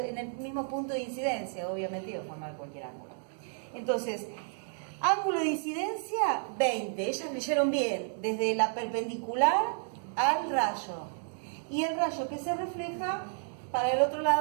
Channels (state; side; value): silent; left; digital silence